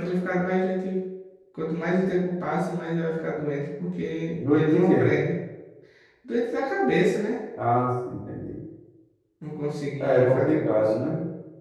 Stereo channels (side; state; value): both; identical; correlation 1.00